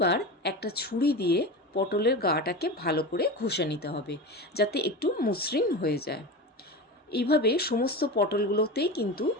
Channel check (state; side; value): normal; both; correlation 0.25